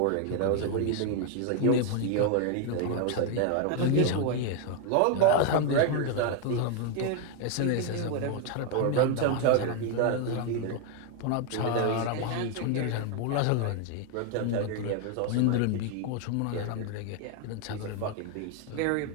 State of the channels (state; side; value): different; both; correlation 0.01